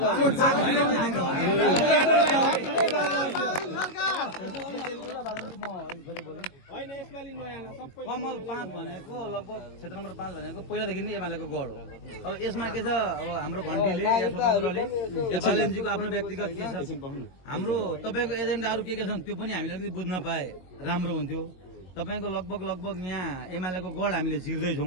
कमल 5 भनेको लगभग क्षेत्र नम्बर 5 भनेको पहिलादेखि नै एमालेको गढ हो अब यसमा के छ अब हाम्रो घन्टीले या स्वतन्त्रले या बालेन्जीको आफ्नो व्यक्तिगत के छ हाम्रो तपाईँको एजेन्डाहरू के छन् त्यो पनि हामीले अलिकति बुझ्न पाए राम्रो हुन्थ्यो तपाईँको लगभग यहाँ एमालेको गढ हामीले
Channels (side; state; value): right; late; 22 ms